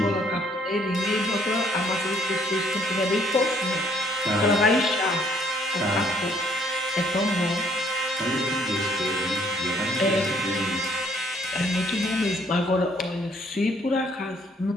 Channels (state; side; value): normal; both; correlation 0.64